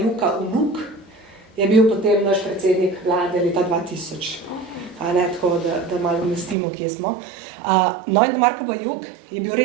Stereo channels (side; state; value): left; drops out; at 6.6 s